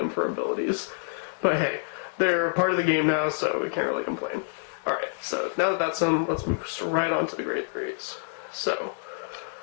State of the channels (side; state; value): right; silent; digital silence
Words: for abilities. But hey, they're part of the game now, so we can't really complain. Alright, so now that that's done, let's move right on to the grade 3s. So,